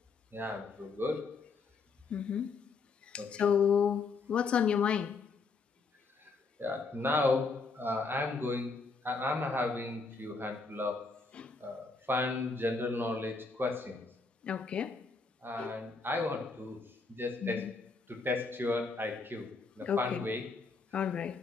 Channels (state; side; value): quieter; right; 4.3 dB